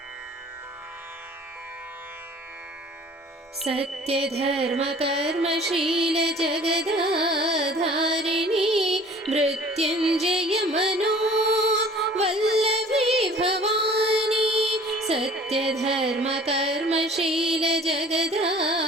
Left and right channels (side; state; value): both; normal; correlation 0.49